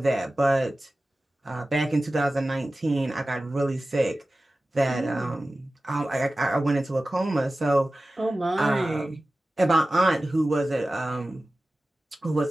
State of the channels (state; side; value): normal; both; correlation 0.95